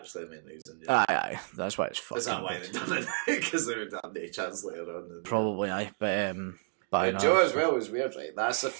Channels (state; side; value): silent; left; digital silence